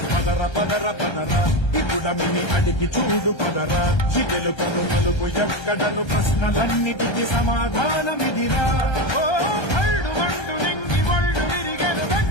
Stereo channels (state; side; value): late; right; 1.3 ms